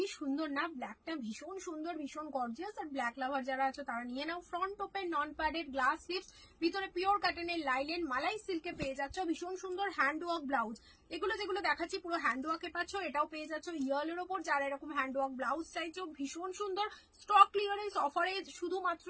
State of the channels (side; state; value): both; identical; correlation 1.00